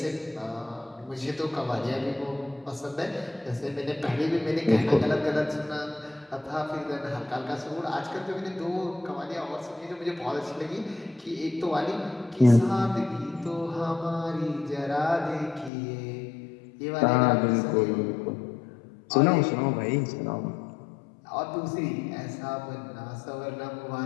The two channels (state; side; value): drops out; right; at 15.7 s